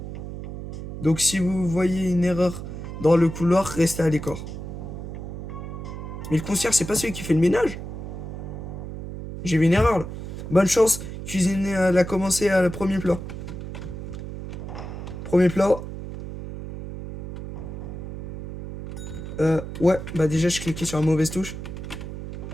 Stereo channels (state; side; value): noise; right; hum, 8 dB below the sound